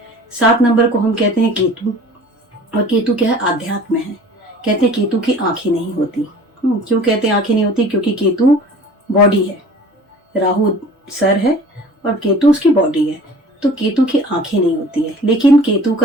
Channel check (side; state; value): both; normal; correlation 0.45